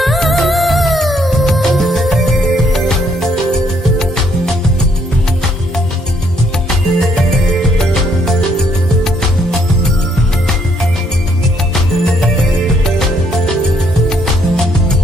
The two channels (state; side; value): normal; both; correlation 0.69